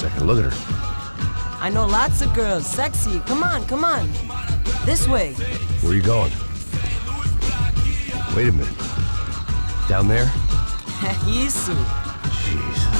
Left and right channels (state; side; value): inverted; both; correlation -1.00